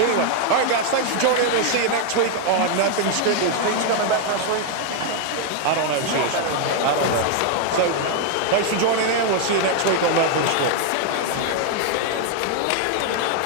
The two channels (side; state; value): both; different; correlation 0.00